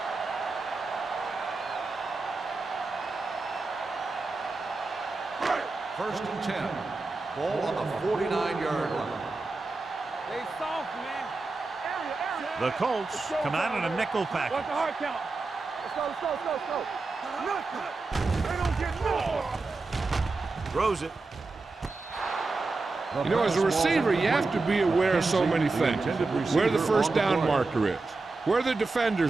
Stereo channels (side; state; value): left; quieter; 3.7 dB